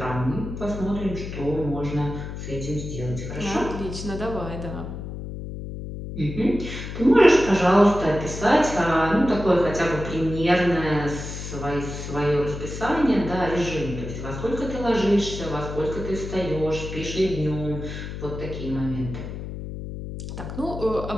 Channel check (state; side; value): noise; left; hum, 8 dB below the sound